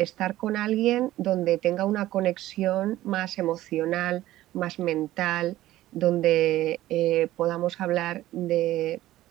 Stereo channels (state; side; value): quieter; left; 15.2 dB